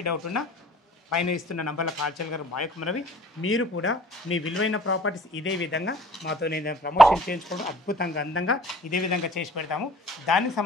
డౌట్ ఉన్నా పైన ఇస్తున్న నంబర్లో కాల్ చేయగలరు. మా యొక్క మనవి మీరు కూడా మీ విలువైన ప్రాపర్టీస్ ఇదే విధంగా మాతో నేను ప్రమోషన్ చేయించుకోవడం అద్భుతంగా అందంగా ఇదే విధంగా చేసి పెడతాము. దానికి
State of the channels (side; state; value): both; normal; correlation 0.51